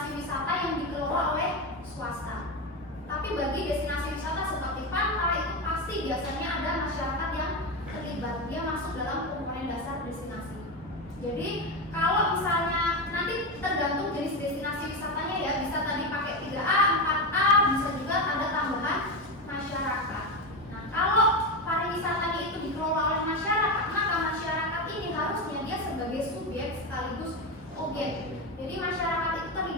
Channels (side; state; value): both; normal; correlation 0.15